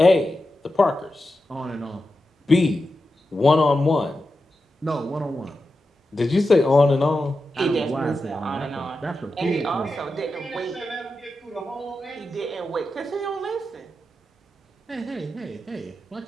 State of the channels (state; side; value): normal; both; correlation 0.90